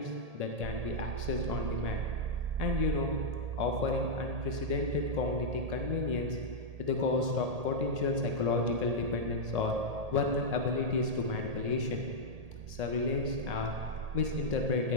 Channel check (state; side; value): late; left; 1.8 ms